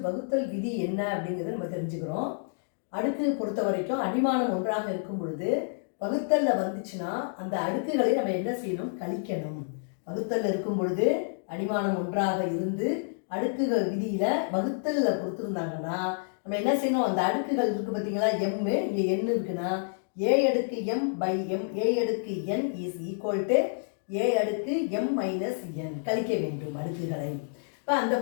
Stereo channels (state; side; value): silent; right; digital silence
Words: வகுத்தல் விதி என்ன அப்படிங்கிறத நம்ம தெரிஞ்சுக்கிறோம். அடுக்கு பொறுத்த வரைக்கும் அடிமானம் ஒன்றாக இருக்கும் பொழுது வகுத்தலில் வந்துச்சுன்னா அந்த அடுக்குகளை நம்ம என்ன செய்யணும்? கழிக்கணும். வகுத்தலில் இருக்கும் பொழுது அடிமானம் ஒன்றாக இருந்து அடுக்குகள் விதியில் வகுத்தலில் கொடுத்துருந்தாங்கன்னா நம்ம என்ன செய்யணும்? அந்த அடுக்குகள் இருக்குது பார்த்தீங்களா, எம்மு, இங்கே என் இருக்குன்னா ஏ அடுக்கு எம் பை எம் ஏ அடுக்கு என் இஸ் ஈக்குவல் டு ஏ அடுக்கு எம் மைனஸ் என். கழிக்க வேண்டும் அடுக்குகளை. இப்போ அந்த